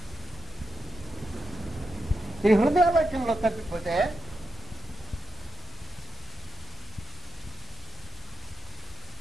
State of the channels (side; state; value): both; normal; correlation 0.87